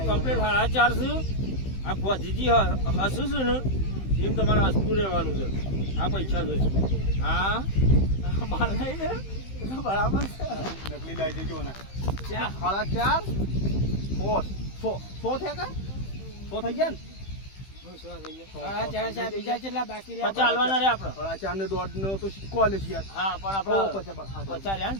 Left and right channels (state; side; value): late; right; 15 ms